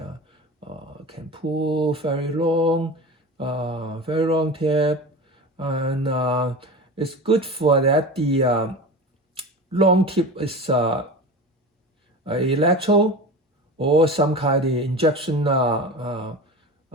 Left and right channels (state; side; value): normal; both; correlation 0.30